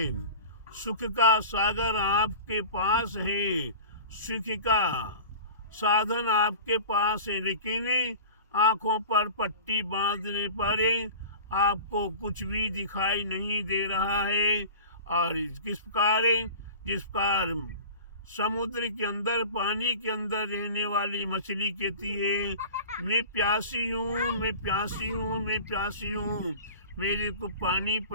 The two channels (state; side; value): inverted; both; correlation -0.38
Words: सुख का सागर आपके पास है, सुख का साधन आपके पास है, लेकिन आंखों पर पट्टी बांधने पर आपको कुछ भी दिखाई नहीं दे रहा है। और किस प्रकार, जिस प्रकार समुद्र के अंदर, पानी के अंदर रहने वाली मछली कहती है मैं प्यासी हूँ, मैं प्यासी हूँ, मैं प्यासी हूँ, मेरे को पानी